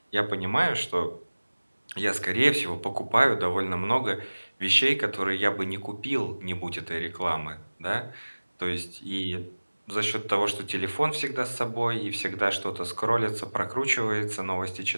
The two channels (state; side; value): inverted; both; correlation -1.00